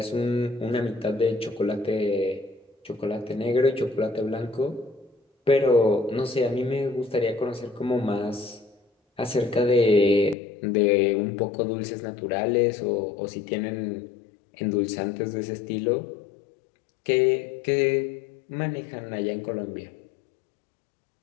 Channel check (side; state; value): right; drops out; at 10.4 s